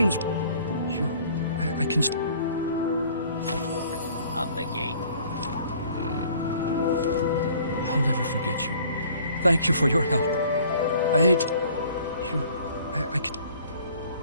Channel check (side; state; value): both; inverted; correlation -0.54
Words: I can... Up the gate. I'll never forget you. Thank you for your help. I hate... I can...